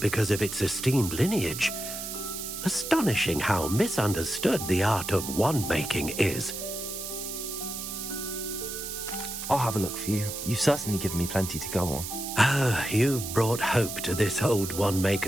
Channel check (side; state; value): right; noise; hiss, 7 dB below the sound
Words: of its esteemed lineage. Astonishing how misunderstood the art of wand-making is. I'll have a look for you. You've certainly given me plenty to go on. Ah, you've brought hope to this old